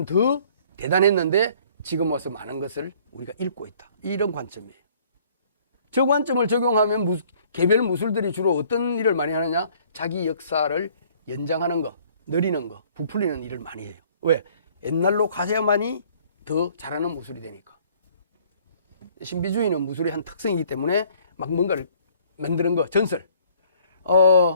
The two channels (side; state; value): both; inverted; correlation -0.58